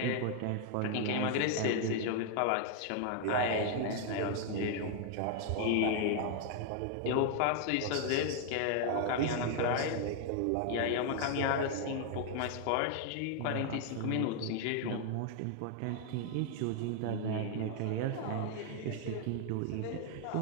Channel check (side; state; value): both; different; correlation 0.00